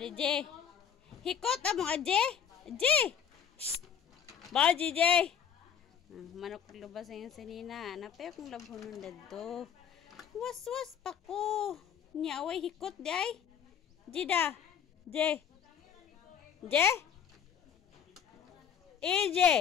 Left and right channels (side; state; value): right; quieter; 8.4 dB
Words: je. Hikot amo aje. Aje. Baji je. Manok lubas yung sinina. Napay akong labhonon dadto. Was-was pa ko. Nya way hikot di ay. Jida. Je. Je.